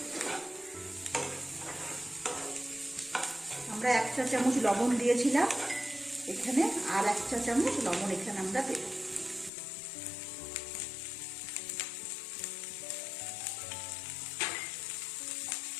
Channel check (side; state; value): right; drops out; at 9.5 s